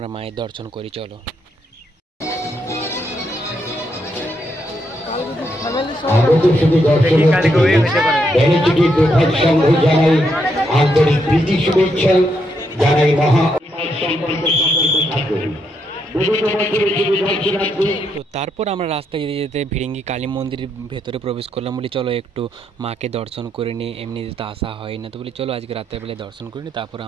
মায়ের দর্শন করি চলো। আন্তরিক প্রীতি শুভেচ্ছা জানাই মহা সম্পর্ক থাকবে। তো তারপর আমরা রাস্তায় যেতে যেতে ভিড়িঙ্গি কালী মন্দিরের ভেতরে প্রবেশ করলাম। বলি চলো একটু মাকে দর্শন করে নিই, এমনিতে তো আসা হয় না। তো বলি চলো আজকে রাত্রেবেলায় দর্শন করে নিই, তারপর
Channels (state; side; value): normal; both; correlation 0.78